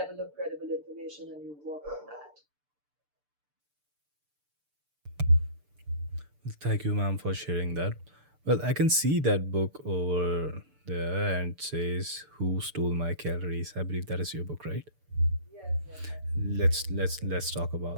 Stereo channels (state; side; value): late; left; 6.8 ms